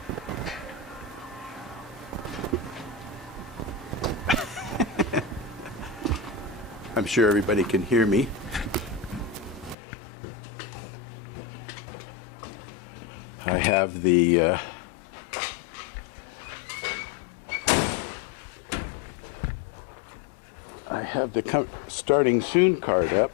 I'm sure everybody can hear me. I have the starting soon card up,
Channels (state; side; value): drops out; right; at 9.8 s